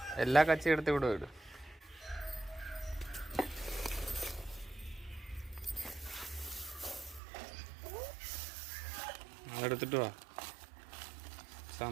എല്ലാ കച്ചി എടുത്ത് ഇവിടെ വിടും. എടുത്തിട്ട് വാ.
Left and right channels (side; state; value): left; drops out; at 7.2 s